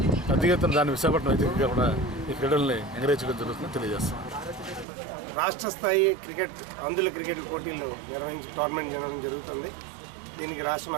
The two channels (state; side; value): drops out; left; at 4.9 s